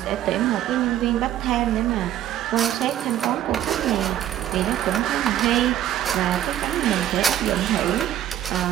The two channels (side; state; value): left; quieter; 11.8 dB